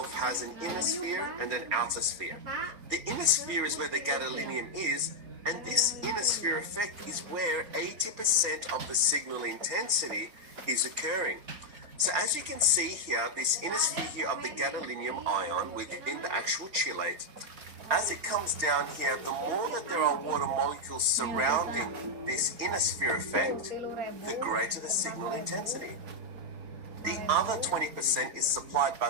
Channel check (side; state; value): left; late; 4.3 ms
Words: has an inner sphere and an outer sphere. The inner sphere is where the gadolinium is, and this inner sphere effect is where 80% of the signal intensity is occurring. So as you can see here, this inner sphere here of the gadolinium ion within the actual chelate, as it comes down here, the more that there are water molecules surrounding this inner sphere effect, the greater the signal intensity. The other 20% is supplied by